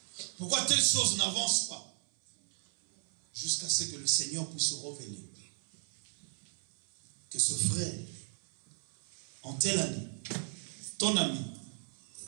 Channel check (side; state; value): left; silent; 54 dB below the other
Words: Pourquoi telle chose n'avance pas. Jusqu'à ce que le Seigneur puisse se révéler. Que ce frère, en telle année, ton ami,